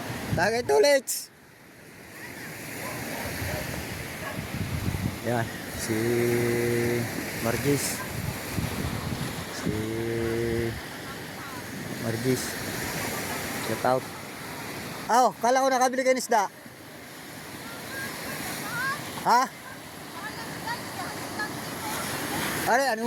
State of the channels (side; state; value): both; identical; correlation 1.00